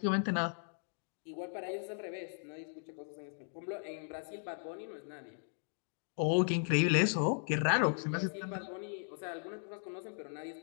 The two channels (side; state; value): right; silent; digital silence